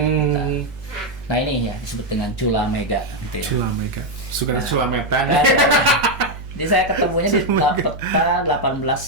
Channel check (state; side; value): noise; right; hum, 14 dB below the sound